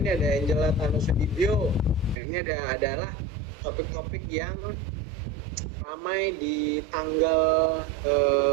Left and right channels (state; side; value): drops out; left; at 2.1 s